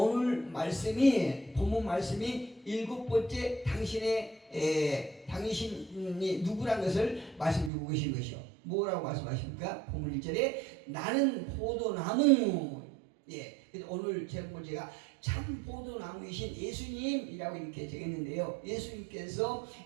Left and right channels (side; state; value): left; drops out; at 7.7 s